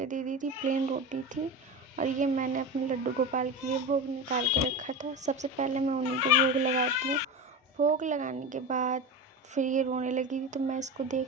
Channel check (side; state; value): both; normal; correlation 0.24